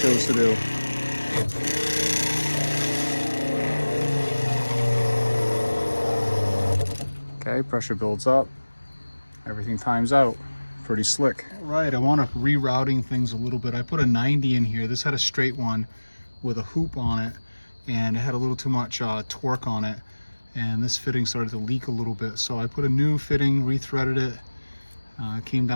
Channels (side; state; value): both; inverted; correlation -1.00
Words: chose to do. Okay, pressure builds up. Everything times out. Pretty slick. Right, I want to rerouting things a little bit. I put a 90 in here. This had a straight one with a hoop on it, and it had a little too much torque on it, and this fitting started to leak a little bit. So I put a new fitting, rethreaded it, came